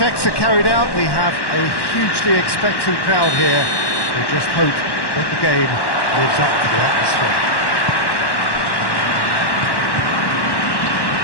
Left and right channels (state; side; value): late; right; 1.1 ms